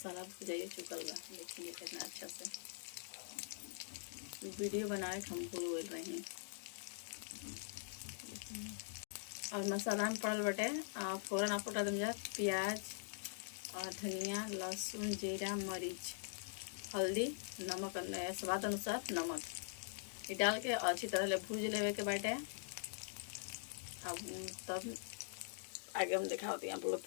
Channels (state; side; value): silent; right; digital silence